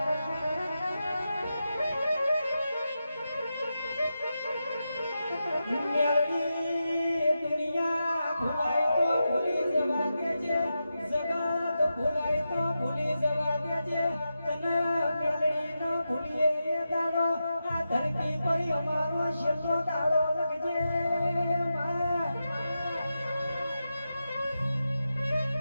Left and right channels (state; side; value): inverted; both; correlation -0.89